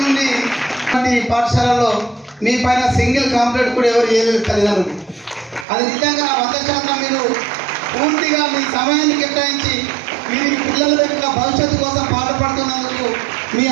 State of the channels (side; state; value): left; drops out; at 5.7 s